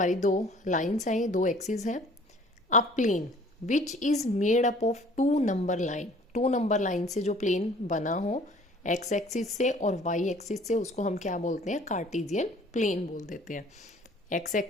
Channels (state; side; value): normal; both; correlation 0.52